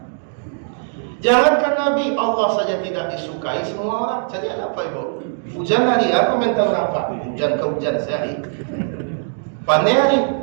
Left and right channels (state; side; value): silent; left; digital silence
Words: Jangankan Nabi, Allah saja tidak disukai semua orang. Jadi apa, Ibu? Hujan hari, apa mental apa? Hujan ke hujan sehari. Pandai hari,